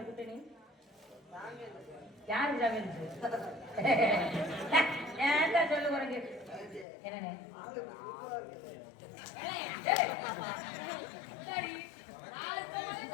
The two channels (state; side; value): drops out; right; at 6.9 s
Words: கூட்ட நீ யாரு ஜாமீன் ஏன்டா சொல்லு உனக்கு என்னண்ணே சரி